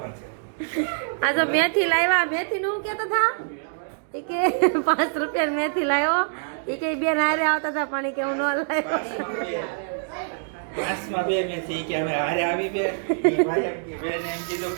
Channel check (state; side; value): silent; left; digital silence